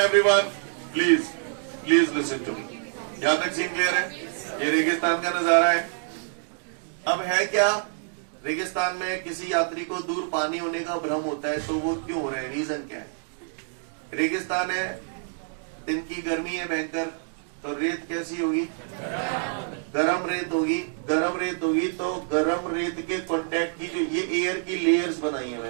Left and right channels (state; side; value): silent; left; digital silence